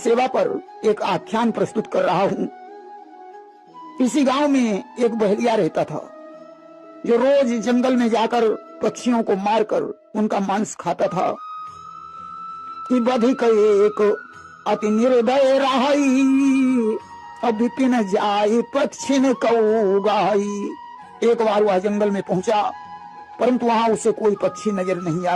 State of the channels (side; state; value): both; identical; correlation 1.00